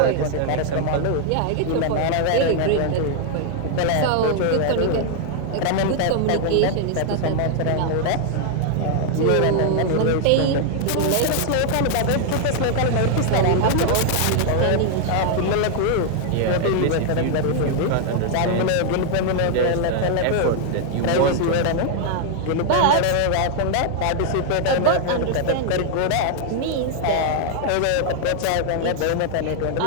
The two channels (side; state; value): both; different; correlation 0.00